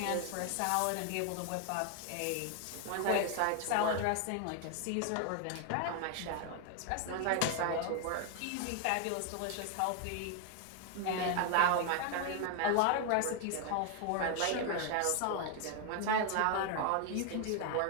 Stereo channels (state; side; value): different; both; correlation 0.01